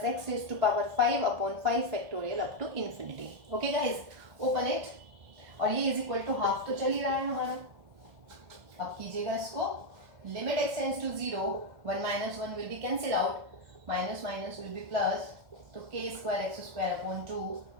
x raise to power 5 upon 5 factorial up to infinity. Okay guys, open it, और ये is equal to half तो चल ही रहा है हमारा। अब कीजिएगा इसको, limit x tends to 0, 1 - 1 will be cancel out, minus minus will be plus, तो k square x square upon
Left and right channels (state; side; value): late; left; 1.5 ms